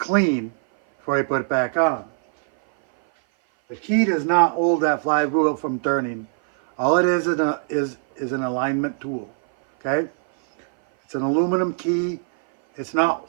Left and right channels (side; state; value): left; silent; 57 dB below the other